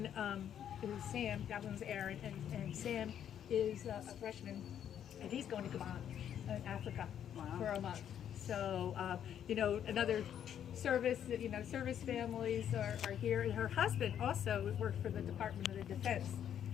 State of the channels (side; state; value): right; quieter; 9.6 dB